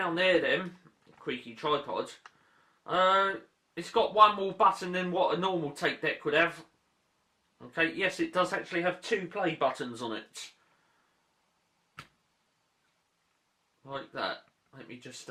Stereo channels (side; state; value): both; identical; correlation 1.00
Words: there then, creaky tripod. It's got one more button than what a normal tape deck would have. Okay, yes, it does actually have 2 play buttons on it. Like that. Let me just